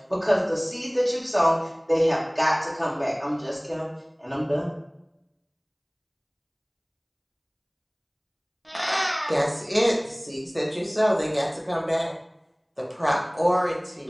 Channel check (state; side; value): identical; both; correlation 1.00